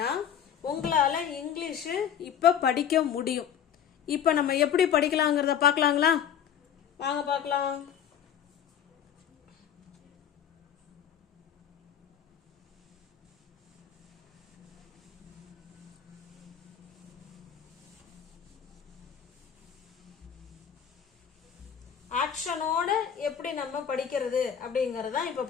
உங்களால் இங்கிலீஷு இப்போ படிக்க முடியும். இப்போ நம்ம எப்படி படிக்கலாங்கிறத பார்க்கலாங்களா? வாங்க பார்க்கலாம். ஆக்ஷனோட எப்படி நம்ம படிக்கிறது அப்படிங்கறத இப்ப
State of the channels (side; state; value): right; quieter; 8.9 dB